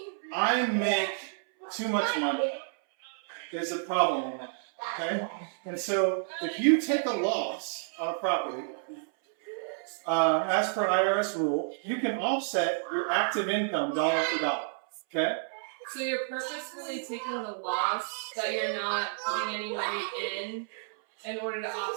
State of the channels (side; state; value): left; silent; 58 dB below the other